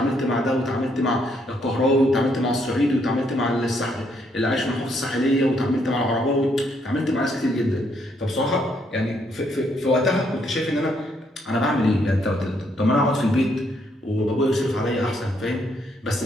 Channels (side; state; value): both; normal; correlation 0.72